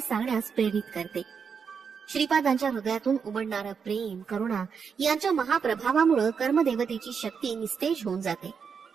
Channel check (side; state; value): left; quieter; 6.3 dB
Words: प्रेरित करते. श्रीपादांच्या हृदयातून उमडणारं प्रेम, करुणा यांच्या महाप्रभावामुळे कर्मदेवतेची शक्ती निस्तेज होऊन जाते.